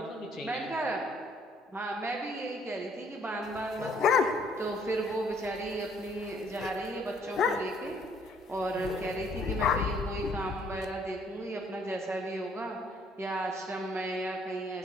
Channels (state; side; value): normal; both; correlation 0.63